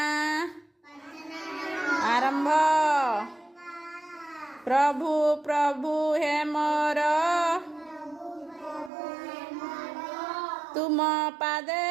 आरंभ। प्रभु प्रभु हे मोर तुम पादे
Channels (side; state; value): left; drops out; at 8.9 s